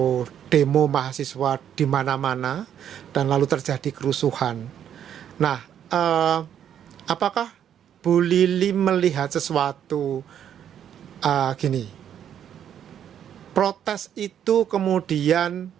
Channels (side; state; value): left; quieter; 9.5 dB